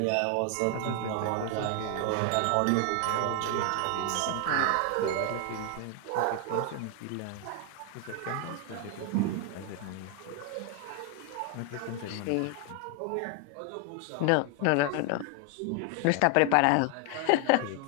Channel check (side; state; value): both; different; correlation 0.00